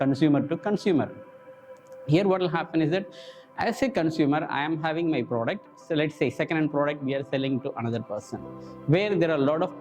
to consumer. Here what will happen is that as a consumer, I am having my product. So let's say second-hand product we are selling to another person, where there are a lot of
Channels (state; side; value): identical; both; correlation 1.00